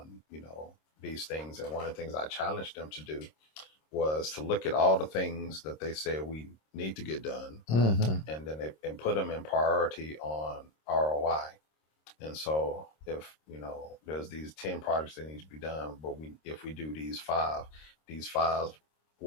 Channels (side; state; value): right; late; 26 ms